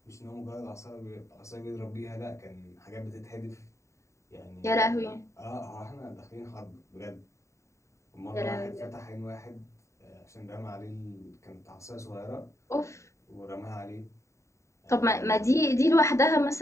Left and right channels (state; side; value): late; right; 0.14 ms